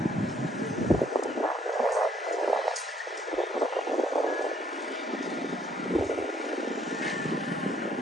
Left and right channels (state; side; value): normal; both; correlation 0.65